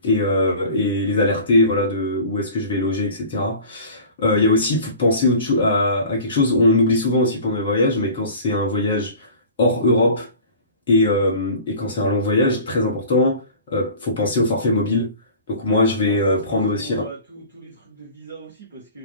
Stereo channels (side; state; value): both; inverted; correlation -0.42